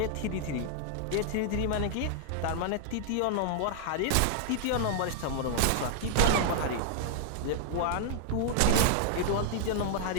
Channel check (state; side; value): different; both; correlation -0.01